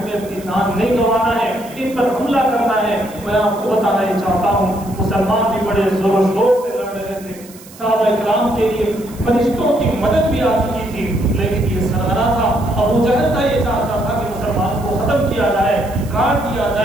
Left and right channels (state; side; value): noise; right; hiss, 21 dB below the sound